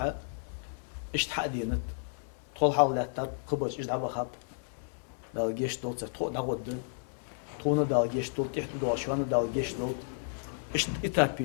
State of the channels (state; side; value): silent; right; digital silence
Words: اشت حدينت طول حاولات قبش ايش دعبا خاب دال جيش دوت تو داود تونا دال جيش دوت تحت دوشوان دال جيش دوت اشت